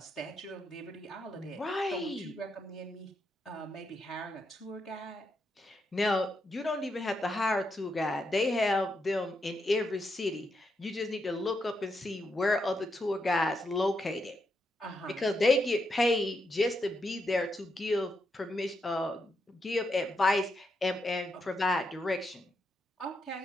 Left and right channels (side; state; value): both; normal; correlation 0.82